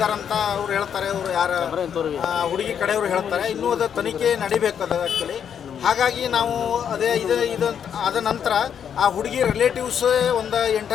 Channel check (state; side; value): quieter; right; 8.2 dB